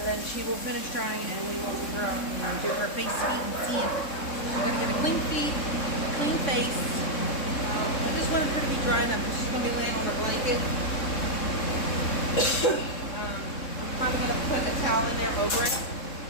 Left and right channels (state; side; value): late; right; 3.7 ms